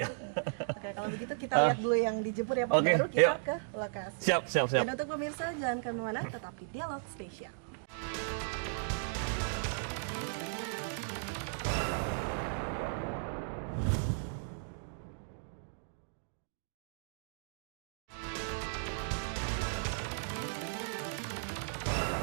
Oke, kalau begitu kita lihat dulu yang dijemur ya Pak, Oke, baru kita yuk. ke lokasi. Siap. Dan untuk pemirsa jangan kemana-mana, tetapi dialog spesial.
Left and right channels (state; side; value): silent; left; digital silence